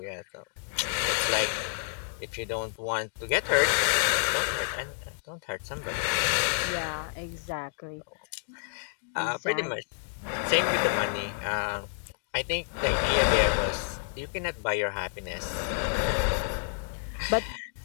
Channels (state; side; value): silent; right; digital silence